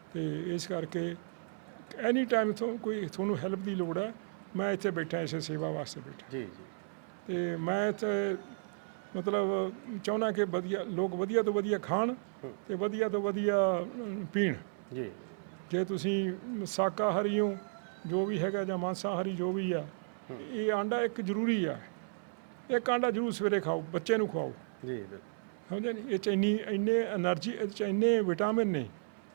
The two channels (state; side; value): silent; left; 55 dB below the other